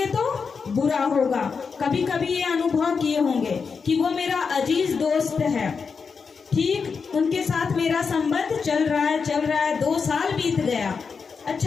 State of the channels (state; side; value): quieter; right; 5.5 dB